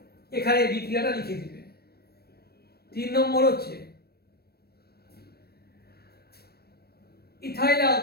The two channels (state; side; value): late; right; 0.46 ms